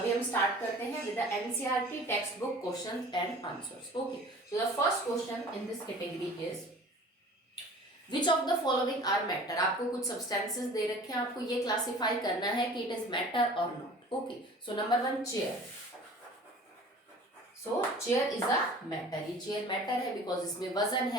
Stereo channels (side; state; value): both; normal; correlation 0.45